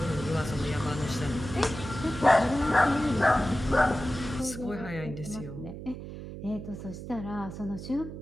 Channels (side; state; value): right; noise; hum, 10 dB below the sound